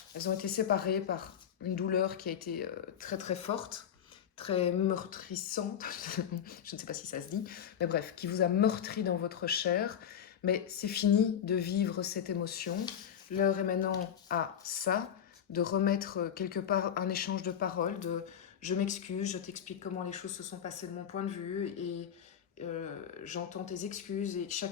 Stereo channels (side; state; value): right; quieter; 8.9 dB